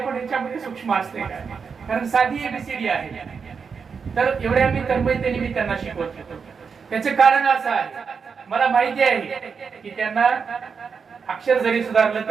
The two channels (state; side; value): quieter; left; 5.8 dB